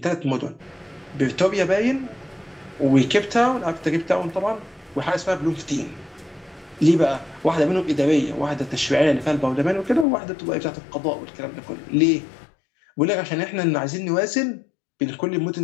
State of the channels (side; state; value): right; drops out; at 10.1 s